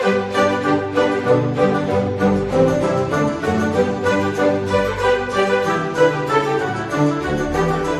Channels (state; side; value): identical; both; correlation 1.00